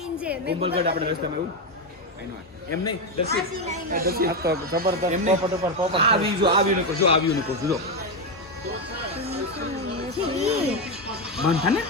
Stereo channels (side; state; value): both; normal; correlation 0.08